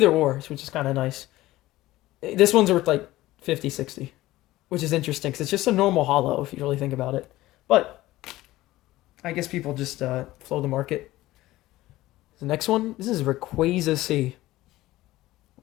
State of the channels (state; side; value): quieter; right; 16.9 dB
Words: or, which is kind of nice. This one's worth like 50, 60. Which is interesting, because it's just a normal hollow, if you really think about it. But I guess people just flow the market. The next one, this is Rayquaza C.